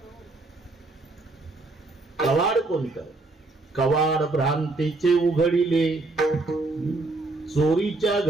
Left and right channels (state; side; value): quieter; left; 3.2 dB